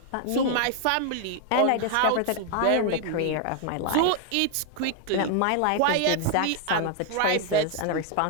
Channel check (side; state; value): both; different; correlation 0.00